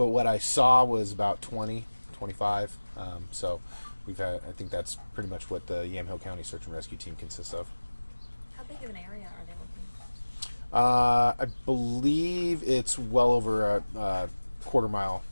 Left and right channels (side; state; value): both; inverted; correlation -1.00